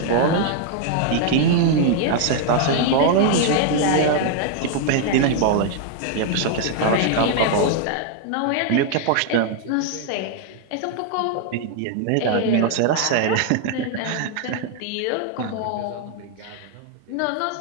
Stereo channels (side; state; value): both; different; correlation 0.00